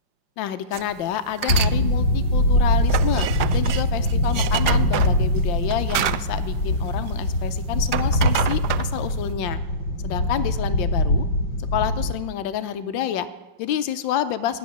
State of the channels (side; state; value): right; late; 4.9 ms